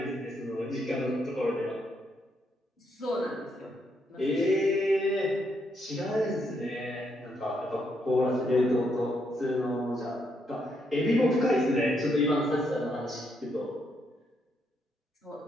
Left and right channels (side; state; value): both; normal; correlation 0.77